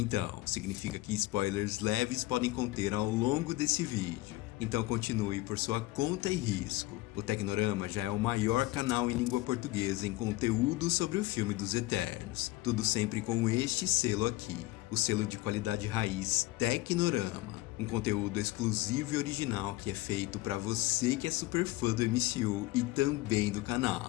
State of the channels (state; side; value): quieter; right; 19.1 dB